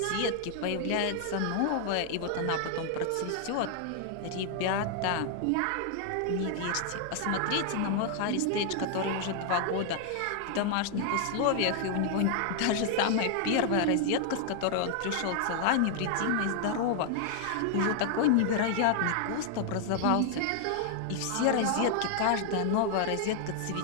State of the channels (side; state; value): both; different; correlation 0.00